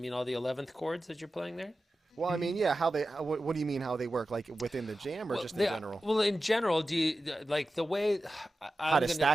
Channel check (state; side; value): normal; both; correlation 0.93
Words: chords that you're playing there? Well, I mean, yeah. What do you mean how they work? Like within the jam, or just in general? Well, in general, do you like the way How to